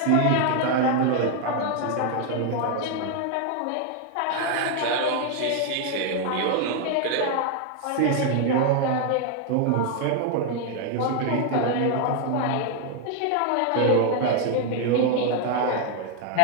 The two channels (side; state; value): both; different; correlation 0.00